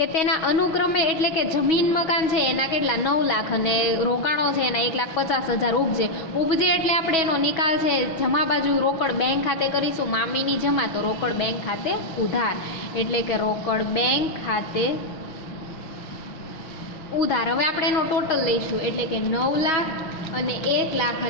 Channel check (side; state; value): right; late; 6.2 ms